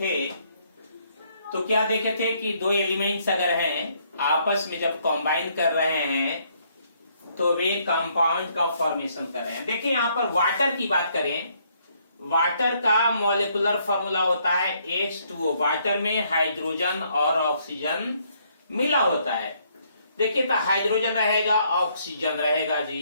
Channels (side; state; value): both; inverted; correlation -0.69